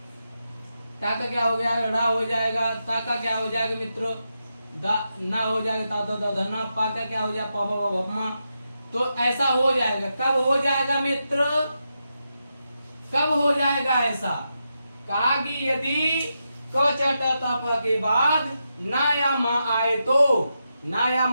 क्या हो गया, ड़ा हो जाएगा, ता का क्या हो जाएगा मित्रों, दा ना हो जाएगा, ता दा धना, पा का क्या हो जाएगा, पा पा पा पा। तो ऐसा हो जाएगा। कब हो जाएगा मित्र, कब हो जाएगा ऐसा, कहा कि यदि क च ट त प के बाद ना या मा आए तो, ना या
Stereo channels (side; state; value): both; inverted; correlation -0.86